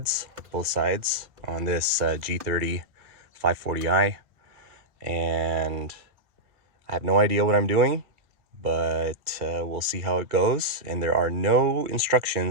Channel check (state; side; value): late; left; 2.3 ms